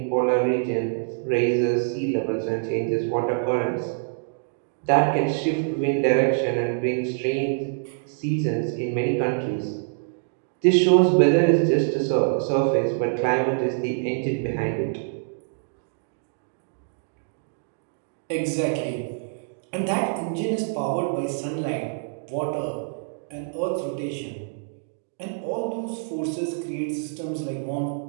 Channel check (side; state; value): left; silent; digital silence